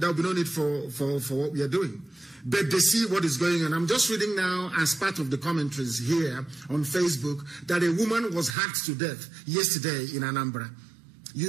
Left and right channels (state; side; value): drops out; left; at 8.6 s